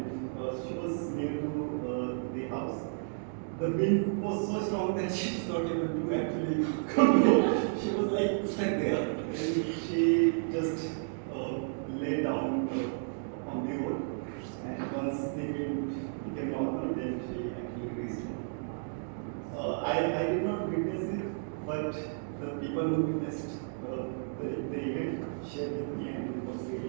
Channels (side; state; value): left; silent; digital silence